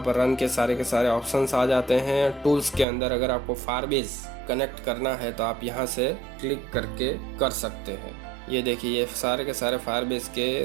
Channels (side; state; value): left; drops out; at 2.9 s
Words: पर रन के सारे ऑप्शंस आ जाते हैं। टूल्स के अंदर अगर आपको फायरबेस कनेक्ट करना है तो आप यहाँ से क्लिक करके कर सकते हैं। ये देखिए ये सारे के सारे फायरबेस के